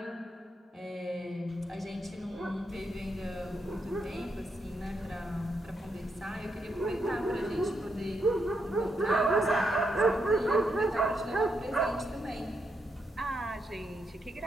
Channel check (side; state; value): both; normal; correlation 0.80